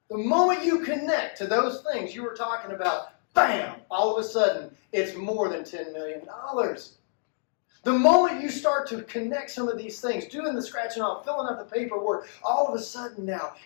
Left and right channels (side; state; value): right; silent; digital silence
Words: The moment you connect to those things you were talking about, bam, all of a sudden, it's more than $10 million. The moment you start to connect some of these things, doing the scratching off, filling out the paperwork, all of a sudden now,